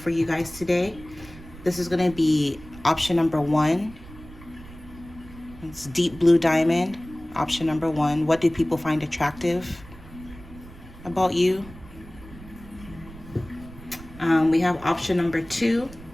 you guys today. This is going to be option number 1. It's deep blue diamond. Option number 1. What do people find attractive about you? We have option number 2.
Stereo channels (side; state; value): right; noise; rumble, 18 dB below the sound